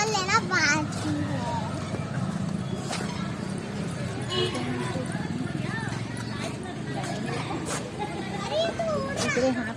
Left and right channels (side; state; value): both; identical; correlation 1.00